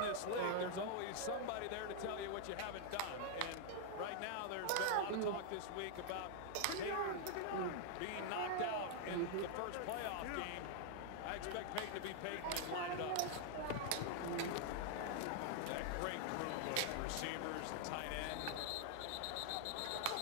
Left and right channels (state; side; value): different; both; correlation 0.00